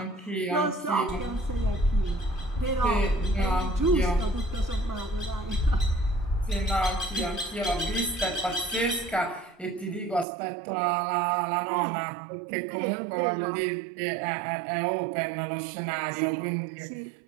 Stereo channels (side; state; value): left; drops out; at 10.2 s